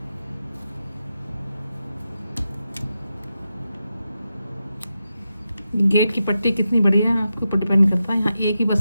गेट की पट्टी कितनी बड़ी है आपके ऊपर डिपेंड करता है। यहाँ एक ही बच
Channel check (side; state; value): both; inverted; correlation -0.89